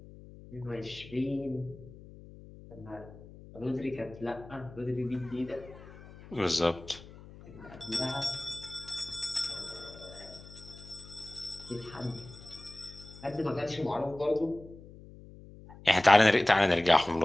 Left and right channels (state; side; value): noise; left; hum, 18 dB below the sound